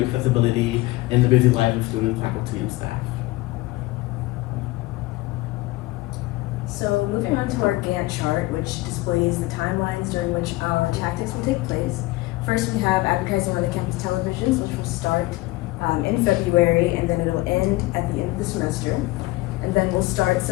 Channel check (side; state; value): right; quieter; 19.8 dB